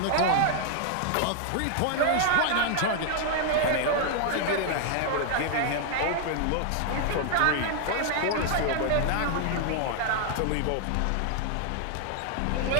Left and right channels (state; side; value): different; both; correlation 0.00